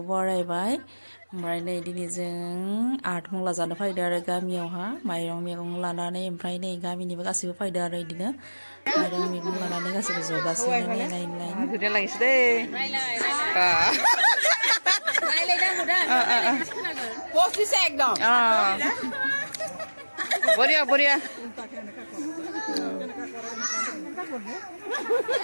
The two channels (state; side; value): inverted; both; correlation -1.00